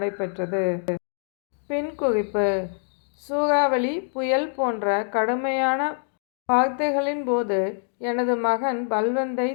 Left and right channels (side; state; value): right; silent; 62 dB below the other